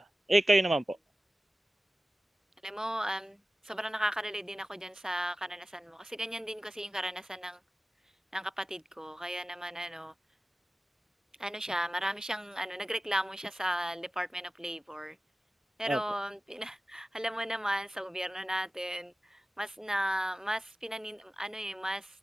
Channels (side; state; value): both; normal; correlation 0.96